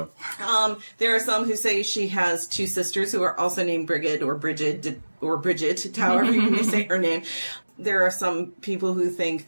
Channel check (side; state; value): both; inverted; correlation -1.00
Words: There are some who say she has 2 sisters who are also named Brigid or Brigid, however you may say her name. There are some people who think